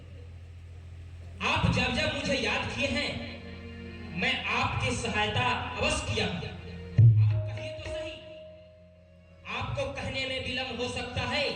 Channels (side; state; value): both; identical; correlation 1.00